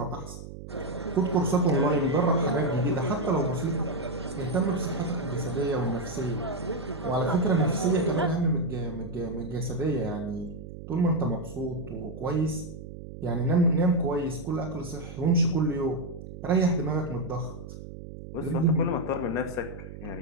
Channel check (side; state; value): right; noise; hum, 12 dB below the sound